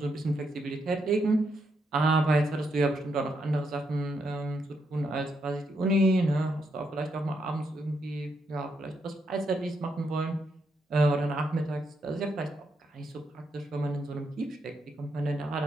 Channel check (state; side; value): normal; both; correlation 0.79